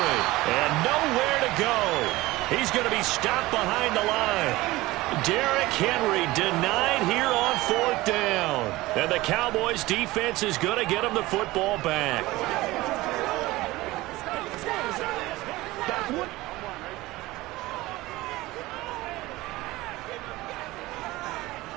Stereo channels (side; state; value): left; quieter; 19.1 dB